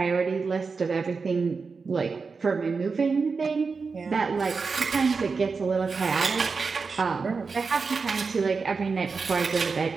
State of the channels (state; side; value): quieter; left; 4.8 dB